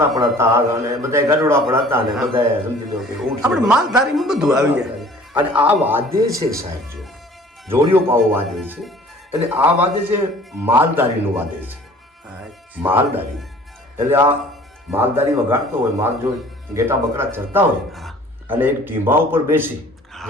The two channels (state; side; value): normal; both; correlation 0.50